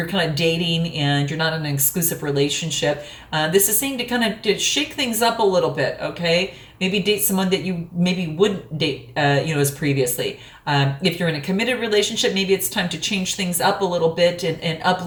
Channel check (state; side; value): identical; both; correlation 1.00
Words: kind of dating and you're not in an exclusive relationship. This is saying to kind of shake things up a little bit, okay? Maybe date someone that you maybe wouldn't date, as previously. If you're in a committed relationship, maybe it's time to change things up a little bit and up